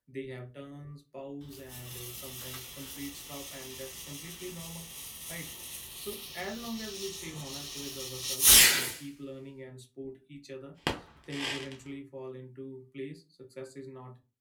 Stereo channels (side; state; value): both; identical; correlation 1.00